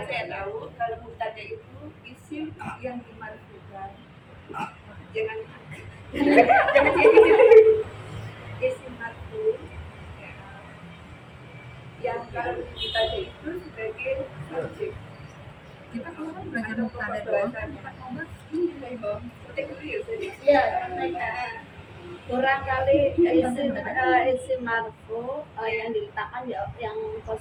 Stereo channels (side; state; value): both; identical; correlation 1.00